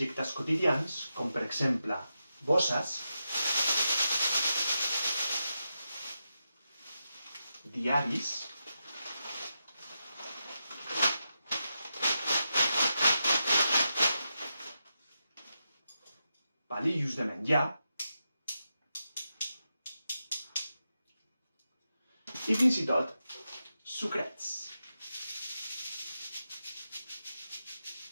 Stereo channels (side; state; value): both; inverted; correlation -0.88